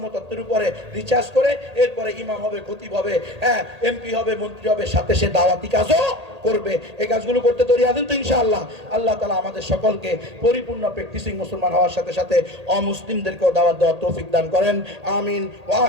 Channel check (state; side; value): late; left; 1.8 ms